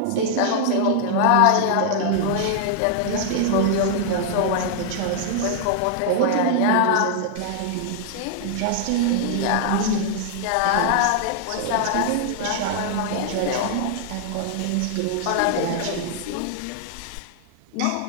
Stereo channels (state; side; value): different; both; correlation 0.00